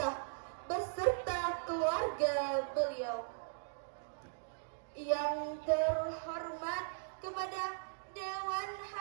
beserta keluarga beliau. Yang terhormat kepada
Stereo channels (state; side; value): silent; left; digital silence